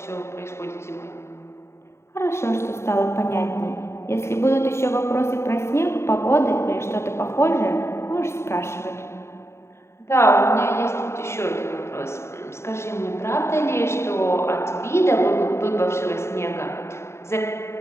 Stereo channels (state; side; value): late; right; 0.13 ms